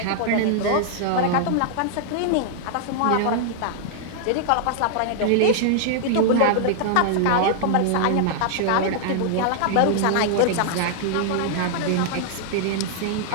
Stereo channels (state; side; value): different; both; correlation -0.01